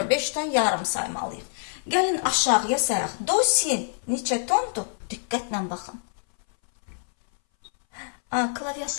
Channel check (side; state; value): right; silent; 60 dB below the other